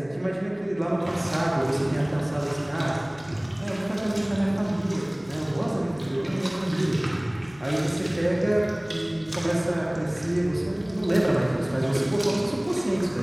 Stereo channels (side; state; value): left; noise; hum, 24 dB below the sound